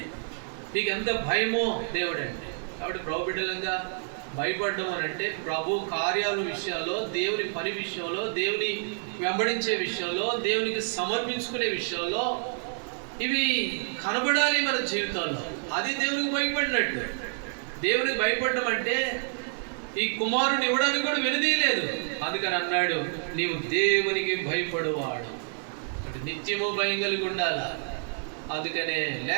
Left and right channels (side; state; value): left; silent; 59 dB below the other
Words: నీకు ఎంత భయమో దేవుడు అంటే. కాబట్టి ప్రభు బిడ్డలంగా భయపడడం అని అంటే ప్రభు కార్యాల విషయాల్లో, దేవుని పని విషయంలో, దేవుని వెంబడించే విషయంలో, దేవునికి సమర్పించుకునే విషయంలో ఇవి కనబడాలి మన జీవితాల్లో. అది దేవునికి భయపడినట్టు. దేవునికి భయపడడం అంటే ఈ కుమారుని ఇవ్వడానికి కూడా వెనుదీయలేదు. అందుకని అన్నాడు, నీవు దేవునికి భయపడువాడు. నిత్యము భయం కలిగి ఉండాలా. అందుకనే